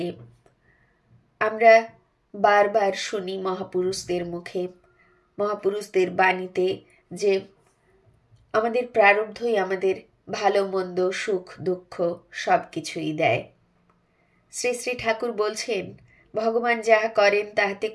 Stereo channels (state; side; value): identical; both; correlation 1.00